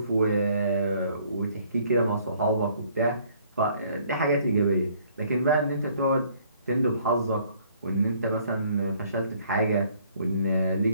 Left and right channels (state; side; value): inverted; both; correlation -0.62